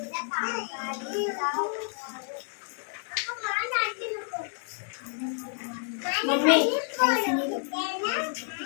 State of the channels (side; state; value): right; silent; 58 dB below the other